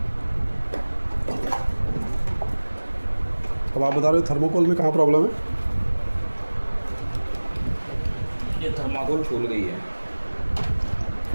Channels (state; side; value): inverted; both; correlation -1.00